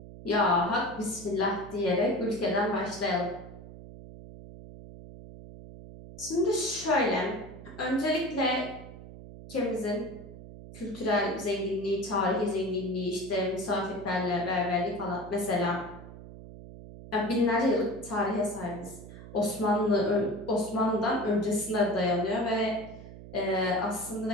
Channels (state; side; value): noise; right; hum, 15 dB below the sound